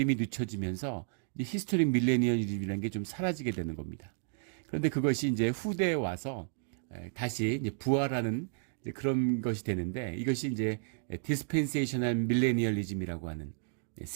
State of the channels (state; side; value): silent; left; digital silence